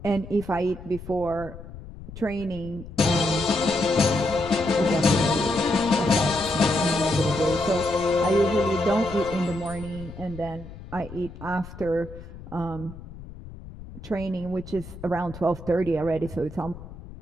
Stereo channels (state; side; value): noise; left; rumble, 14 dB below the sound